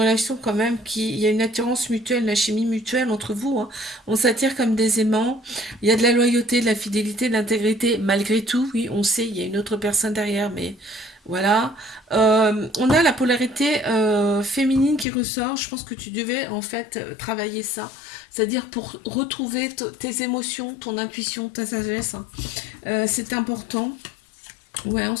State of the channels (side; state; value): right; drops out; at 15.1 s